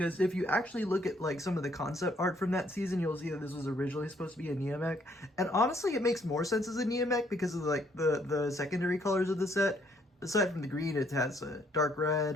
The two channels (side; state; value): both; normal; correlation 0.68